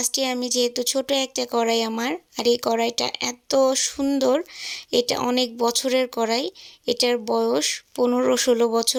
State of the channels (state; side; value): identical; both; correlation 1.00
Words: আমি, যেহেতু ছোট একটা কড়াই আমার, আর এই কড়াইটা এত সুন্দর, এটা অনেক বছরের কড়াই, এটার বয়স 15-16